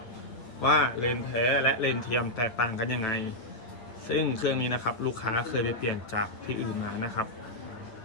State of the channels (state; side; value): late; right; 9.2 ms